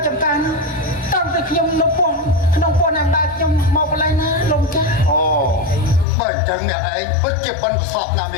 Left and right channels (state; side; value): drops out; right; at 6.1 s